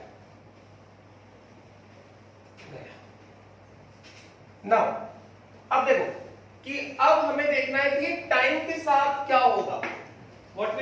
नाउ अब देखो कि अब हमें देखना है कि टाइम के साथ क्या होगा, what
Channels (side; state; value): both; identical; correlation 1.00